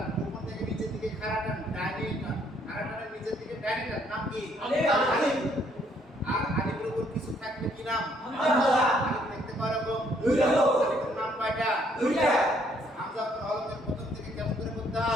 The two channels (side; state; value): both; normal; correlation 0.67